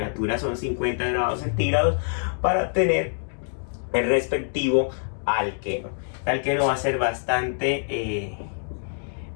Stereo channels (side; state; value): right; silent; digital silence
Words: son 50 grados centígrados para obtener el respectivo alqueno. El alqueno va a ser bastante